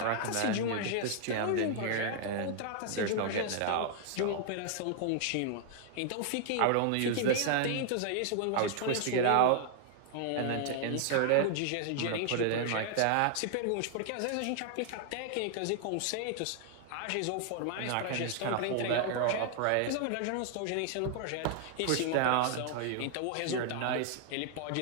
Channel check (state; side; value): different; both; correlation 0.00